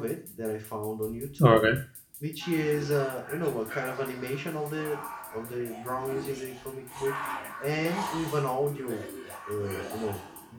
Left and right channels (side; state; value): both; identical; correlation 1.00